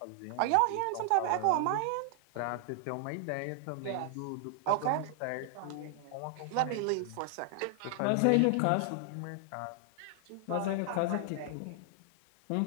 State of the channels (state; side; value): different; both; correlation 0.00